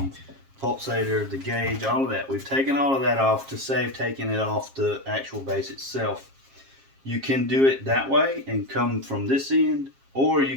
pulsator, the gauge, all of that. We've taken all of that off to save taking it off the actual base itself. You can do it that way and come from this end, or you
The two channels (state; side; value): late; left; 7.4 ms